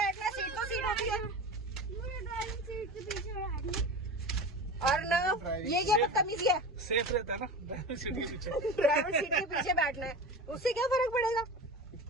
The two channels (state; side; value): normal; both; correlation 0.30